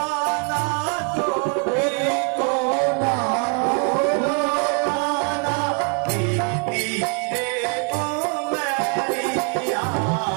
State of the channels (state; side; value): quieter; left; 36.2 dB